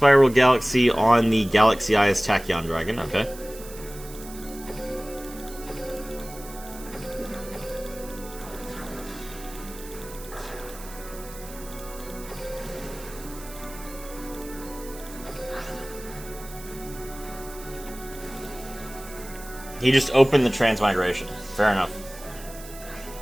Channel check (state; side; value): noise; right; hiss, 16 dB below the sound